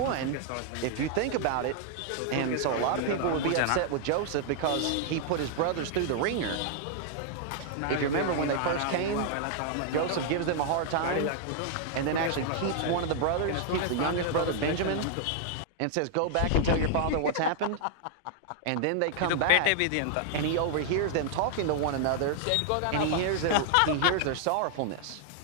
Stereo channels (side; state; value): both; different; correlation -0.01